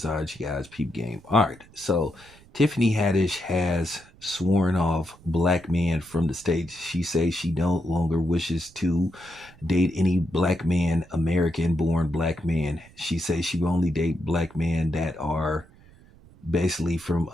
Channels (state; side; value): noise; right; rumble, 25 dB below the sound